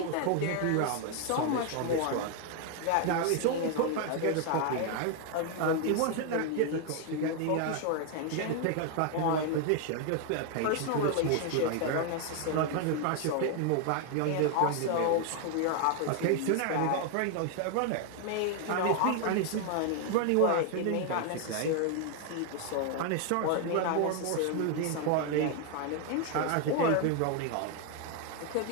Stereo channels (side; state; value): both; different; correlation 0.00